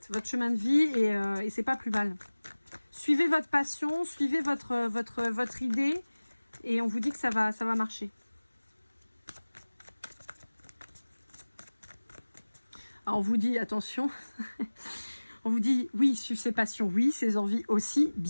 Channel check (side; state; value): both; inverted; correlation -1.00